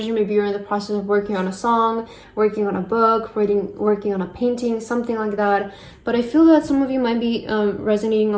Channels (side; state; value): both; identical; correlation 1.00